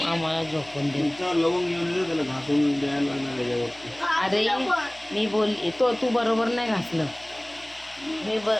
आम्हाला झोपून दे. अरे मी बोलली तू बरोबर नाही घासलं. मी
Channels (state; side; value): noise; left; hum, 26 dB below the sound